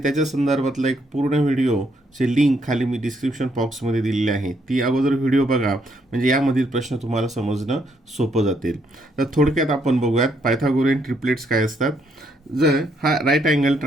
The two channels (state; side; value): normal; both; correlation 0.73